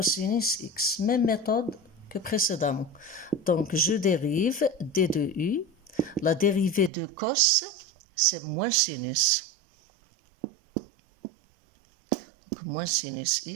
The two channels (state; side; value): drops out; left; at 6.9 s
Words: x. Même méthode que précédemment. Donc, je dérive d de u. La dérivée de cos, c'est moins sinus. Donc, moins sinus